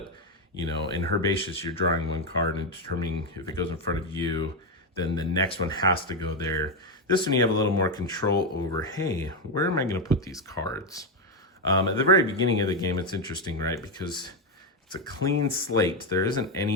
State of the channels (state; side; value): normal; both; correlation 0.07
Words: you know, in Herbaceous, you're drawing 1 card and determining if it goes in front of you, then the next one has to go there. This one you have a little more control over, hey, where am I going to put these cards? At the very beginning of the game, it's interesting, right? Because it's a clean slate. There isn't